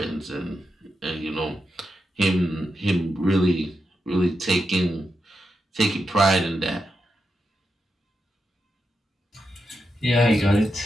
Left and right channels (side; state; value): both; normal; correlation 0.86